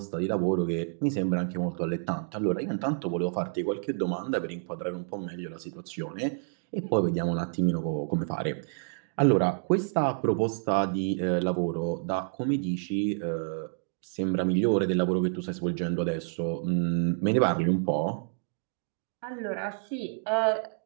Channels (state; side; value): silent; left; digital silence